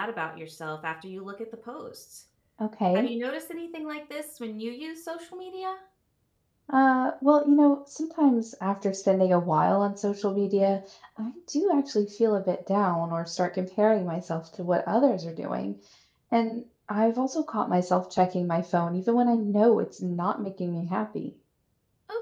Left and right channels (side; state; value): both; identical; correlation 1.00